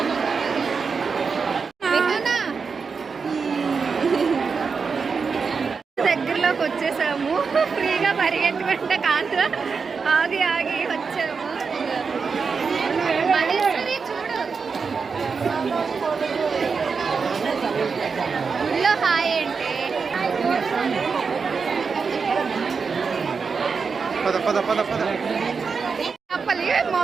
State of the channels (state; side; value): quieter; left; 5.3 dB